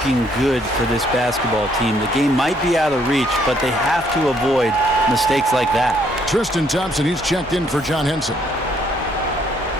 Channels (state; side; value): normal; both; correlation 0.68